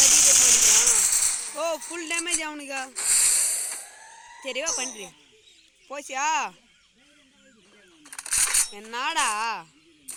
பண்ணிக்கிறான். ஓ ஃபுல் டேமேஜ் அவனுக்கா. சரிவா பண்ணுறி போச்சியா என்னடா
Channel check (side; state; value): both; identical; correlation 1.00